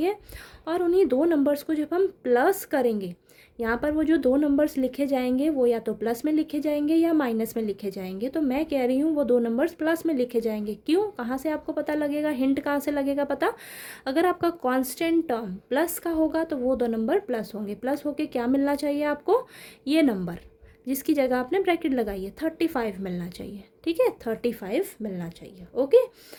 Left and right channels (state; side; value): identical; both; correlation 1.00